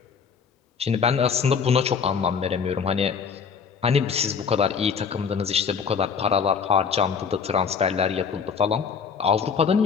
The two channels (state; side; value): quieter; right; 6.3 dB